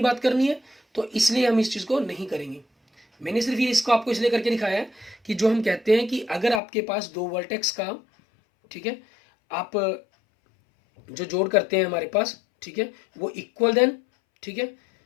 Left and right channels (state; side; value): drops out; right; at 6.6 s